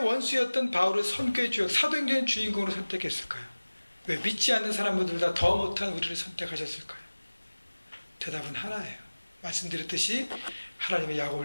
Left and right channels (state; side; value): inverted; both; correlation -1.00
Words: 바울을 선교의 주역, 사도행전의 주인공으로 선택했을까요? 왜 믿지 않는 사람들보다 더 못한 우리를 선택하셨을까요? 대답은 하나예요. 말씀드렸듯이 하나님의